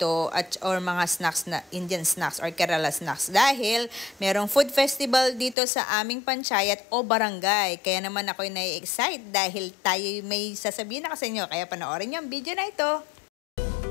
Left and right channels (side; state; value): right; drops out; at 5.6 s